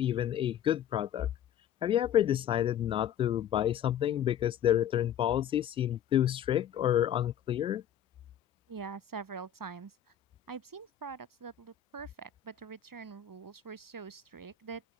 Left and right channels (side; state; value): right; quieter; 10.0 dB